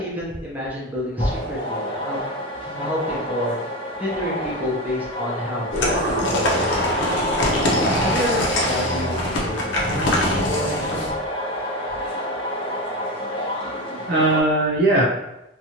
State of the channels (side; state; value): both; normal; correlation 0.18